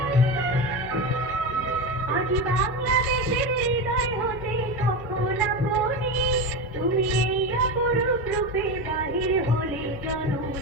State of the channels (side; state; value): both; normal; correlation 0.19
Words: আজ বাংলাদেশের হৃদয় হতে কখন আপনি, তুমি এই অপরূপ রূপে বাহির হলে